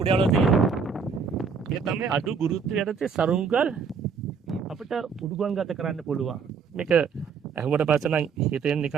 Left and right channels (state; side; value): quieter; left; 5.8 dB